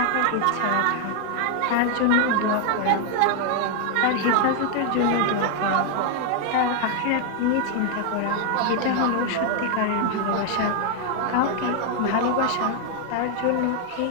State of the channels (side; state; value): both; different; correlation 0.00